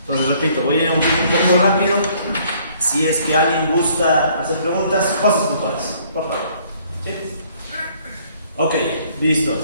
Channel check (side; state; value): both; inverted; correlation -0.61